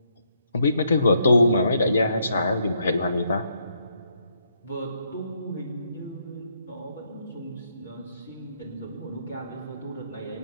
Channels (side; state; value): both; inverted; correlation -0.75